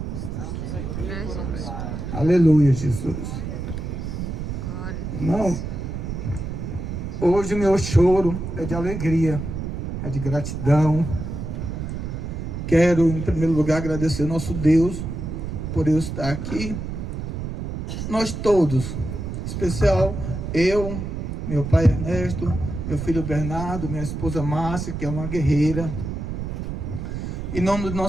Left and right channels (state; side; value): noise; right; rumble, 5 dB below the sound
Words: Estamos aqui por um milagre. Aleluia, Jesus. Irmão, hoje o meu choro é de alegria, é de gratidão. Quero, em primeiro lugar, agradecer ao nosso Deus por eu estar aqui. Nós todos, em especial eu, meu pai Ernesto, meu filho Bernardo, minha esposa Márcia, que é uma guerreira. Em nome do